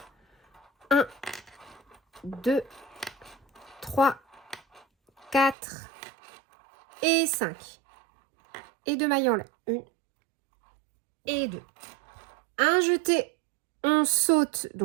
1, 2, 3, 4 et 5. Et 2 mailles en l'air, 1 et 2. Un jeté, on saute,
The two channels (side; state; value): left; drops out; at 5.6 s